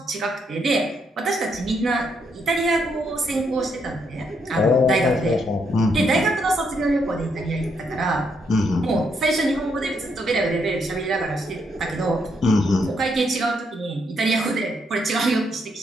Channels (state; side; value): normal; both; correlation 0.76